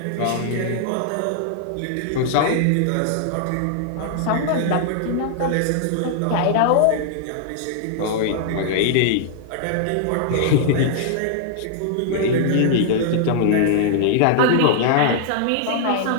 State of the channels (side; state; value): both; different; correlation -0.01